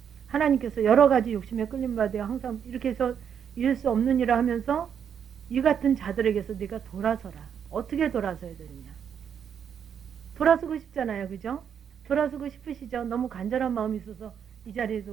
하나님께서 여러 가지 욕심에 끌림받아 항상 이렇게 해서 이룰 수 없는 일을 하면서 이 같은 자들에게서 네가 돌아서라. 어떻게 돌아서야 되느냐. 돌아서고 싶잖아요. 그죠? 돌아서고 싶으시죠? 너무 간절한 마음이 있어서 이 자리에서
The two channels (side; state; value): left; quieter; 8.0 dB